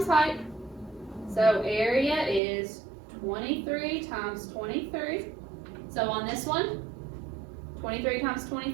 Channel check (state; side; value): drops out; left; at 2.4 s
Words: height. So area is 23 times 23. So on this one, 23 times